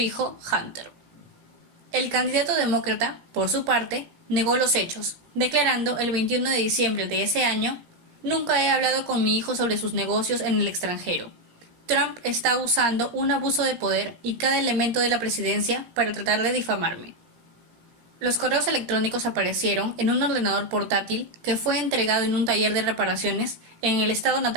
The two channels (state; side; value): late; left; 17 ms